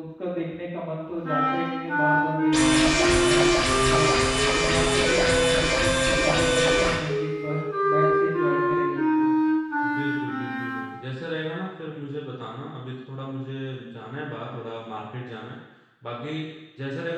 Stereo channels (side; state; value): both; identical; correlation 1.00